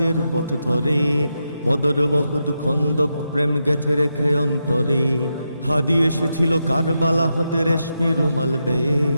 পথ ধরে, বদর উহুদ খন্দক প্রেম গেথে রেখে অন্তরে। হাদি এসেছিল কারবালা হতে রেশমি রুমাল বেয়ে,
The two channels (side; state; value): both; inverted; correlation -0.86